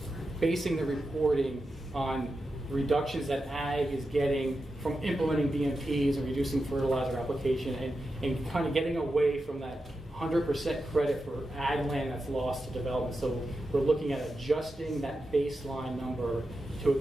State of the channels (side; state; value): both; normal; correlation 0.89